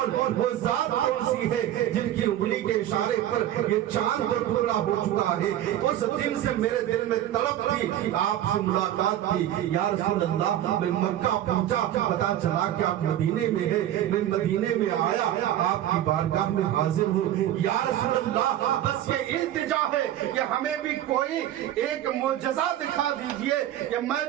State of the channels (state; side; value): quieter; left; 12.3 dB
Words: وہ ذات کون سی ہے جن کی انگلی کے اشارے پر یہ چاند کو ٹکڑا ہو چکا ہے۔ اس دن سے میرے دل میں طلب تھی، آپ سے ملاقات تھی۔ یا رسول اللہ، میں مکہ پہنچا، پتا چلا کہ آپ مدینے میں ہیں، میں مدینے میں آیا، آپ کی بارگاہ میں حاضر ہوں۔ یا رسول اللہ، بس یہ التجا ہے کہ ہمیں بھی کوئی ایک معجزہ دکھا دیجئے کہ میں